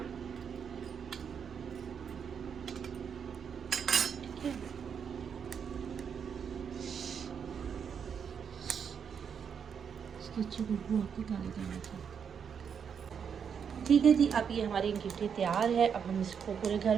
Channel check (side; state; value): left; quieter; 7.2 dB